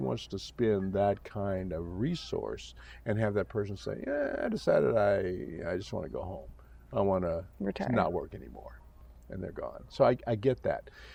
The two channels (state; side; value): identical; both; correlation 1.00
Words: to spend that kind of resource and have that person say, I decided I just want to go home. I want to not work anymore. And they're gone. So I get that.